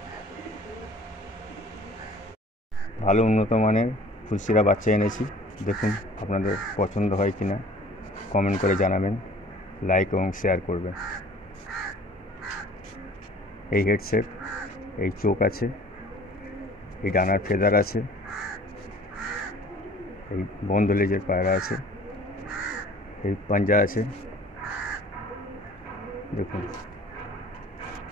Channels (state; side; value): normal; both; correlation 0.49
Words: ভালো উন্নত মানের ফুলসিরা বাচ্চা এনেছি। দেখুন আপনাদের পছন্দ হয় কিনা কমেন্ট করে জানাবেন, লাইক এবং শেয়ার করবেন। এই হেডসেট, এই চোখ আছে, এই ডানার ফেদার আছে, এই বন্ধ লেজের পায়রা আছে, এই পাঞ্জা আছে দেখুন।